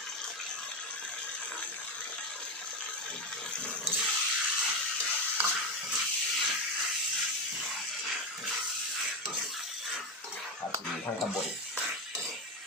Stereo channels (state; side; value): normal; both; correlation 0.14